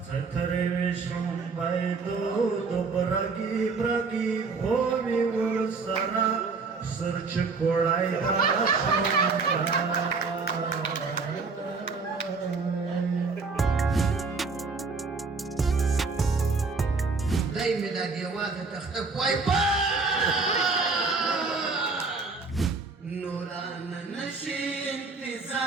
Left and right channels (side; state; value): left; quieter; 4.4 dB